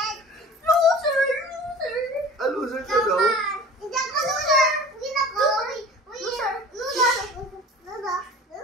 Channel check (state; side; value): normal; both; correlation 0.42